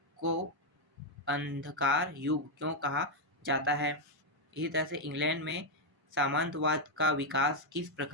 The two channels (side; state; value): both; normal; correlation 0.01